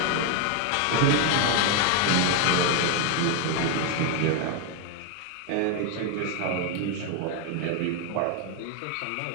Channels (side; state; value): both; different; correlation 0.01